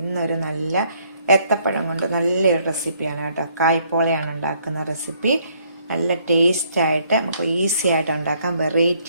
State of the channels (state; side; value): inverted; both; correlation -0.66